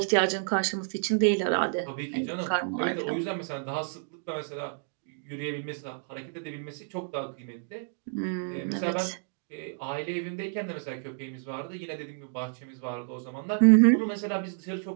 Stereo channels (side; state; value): left; silent; digital silence